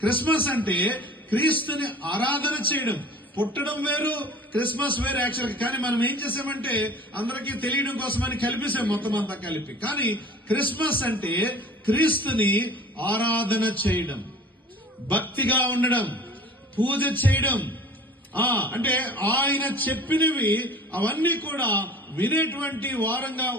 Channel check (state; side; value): normal; both; correlation 0.44